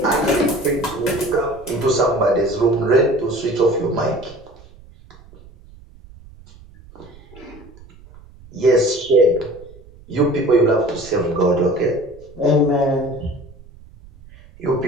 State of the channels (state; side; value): noise; right; rumble, 22 dB below the sound